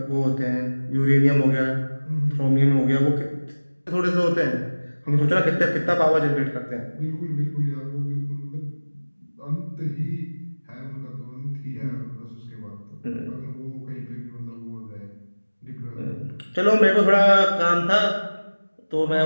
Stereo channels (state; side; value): inverted; both; correlation -1.00